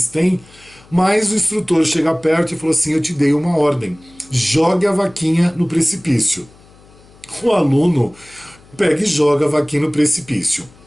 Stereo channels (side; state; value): left; noise; hum, 26 dB below the sound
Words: têm. Mas o instrutor chega perto e falou assim, eu te dei uma ordem, jogue a vaquinha no precipício. O aluno pega e joga a vaquinha no precipício.